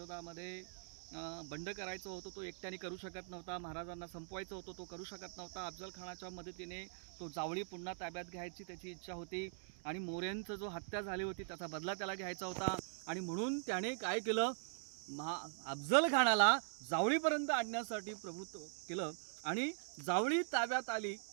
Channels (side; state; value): left; silent; digital silence